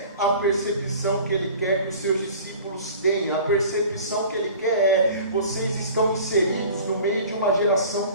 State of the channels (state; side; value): inverted; both; correlation -0.43